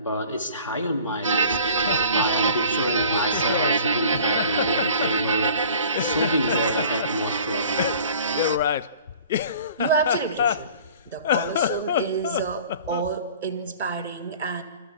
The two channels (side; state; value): both; inverted; correlation -0.47